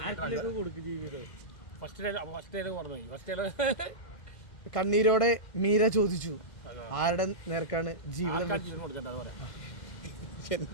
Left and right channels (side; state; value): right; late; 1.5 ms